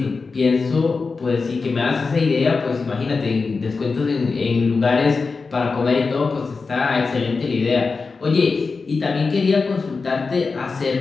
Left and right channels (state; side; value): quieter; right; 4.4 dB